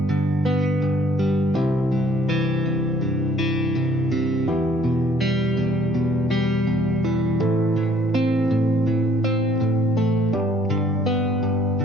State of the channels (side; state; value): both; normal; correlation 0.60